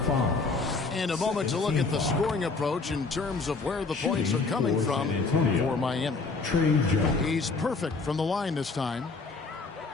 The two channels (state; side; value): quieter; right; 4.0 dB